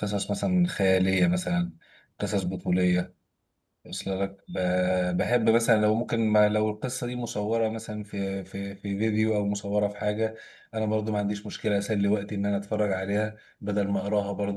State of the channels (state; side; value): identical; both; correlation 1.00